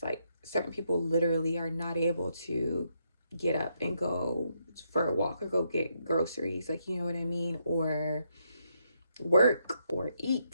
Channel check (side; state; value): both; inverted; correlation -0.78